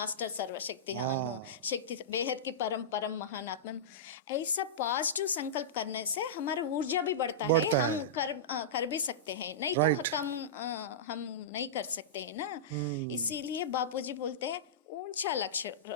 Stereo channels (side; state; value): both; normal; correlation -0.15